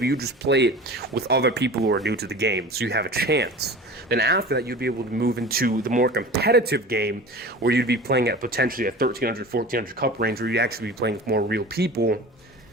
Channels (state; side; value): normal; both; correlation 0.37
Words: you just play it with other people who are new to the game, so you have a chance. Then after that, you'd be able to move into the more competitive game where you'd be playing at potentially a 1300, 1400 cup range where you'd actually be playing with more real people